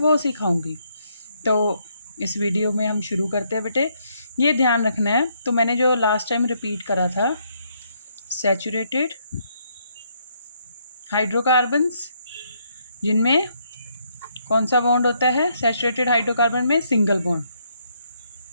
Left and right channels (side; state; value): both; inverted; correlation -0.73